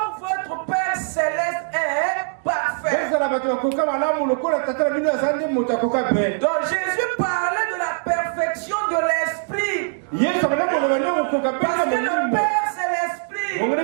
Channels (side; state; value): left; silent; 64 dB below the other